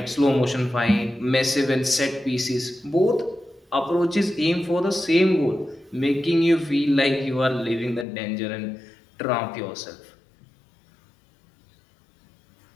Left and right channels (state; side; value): drops out; right; at 8.1 s